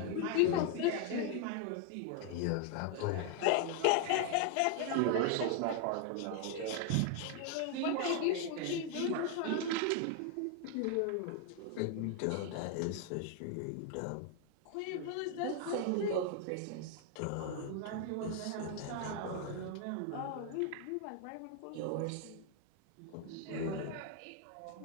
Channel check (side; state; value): both; different; correlation 0.00